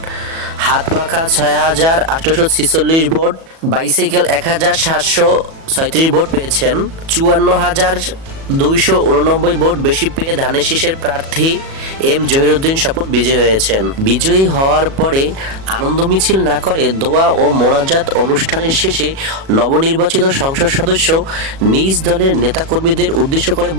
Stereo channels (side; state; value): left; late; 37 ms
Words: হাত পাখা 6,846 ভোট, বাইসাইকেল 1,736 ভোট পেয়েছেন। 54,289 ভোট বেশি পেয়ে ধানের শীষের প্রার্থী এম জহিরুদ্দিন স্বপন বিজয়ী হয়েছেন। বিজয়ী হওয়ার পরে আনন্দ মিছিল না করে দোয়া ও মোনাজাত অনুষ্ঠানের শেষে নবনির্বাচিত সংসদ সদস্য নিজ দলের নেতাকর্মীদের উদ্দেশ্য করে